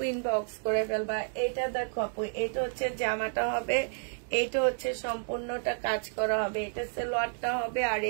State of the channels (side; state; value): left; silent; digital silence